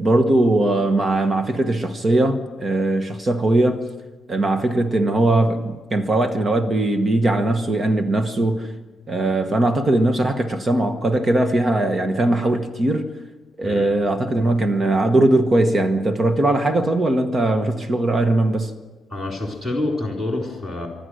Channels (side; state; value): both; normal; correlation 0.86